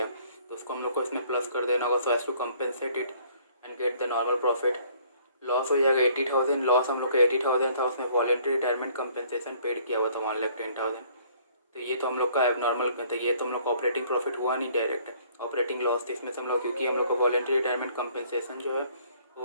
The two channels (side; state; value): both; inverted; correlation -0.59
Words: तो उसको हम लोग को इसमें प्लस कर देना होगा so as to compensate it and get the normal profit. Loss हो जाएगा 80,000, लॉस हम लोग का 80,000 था, उसमें वॉलेंट्री रिटायरमेंट कंपेंसेशन पेड किया हुआ था 1,10,000। तो ये तो हम लोग का एबनॉर्मल, तो ये तो हम लोग का ऑपरेटिंग प्रॉफिट हुआ नहीं, डायरेक्ट ऑपरेटिंग लॉस थी इसमें से हम लोग, क्योंकि हम लोग का वॉलेंट्री रिटायरमेंट कंपेंसेशन जो है